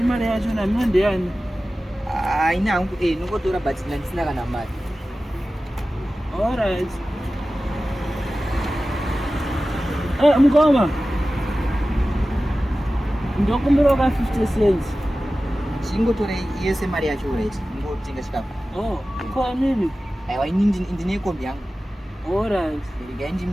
mari yacho namino ndeyani? Ina hangu nongotora but ndisina kana mari. Alright. Mukoma. Ndokumbira ka 50 cents. Chingotore yese mari yacho right. Ngotenga chikafu. Kwa mimi? Aiwa ini ndine kombi yangu. Alright. Regai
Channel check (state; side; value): normal; both; correlation 0.95